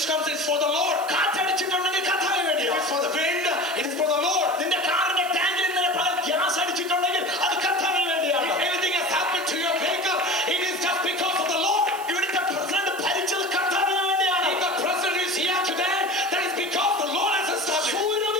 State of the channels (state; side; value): noise; right; hiss, 16 dB below the sound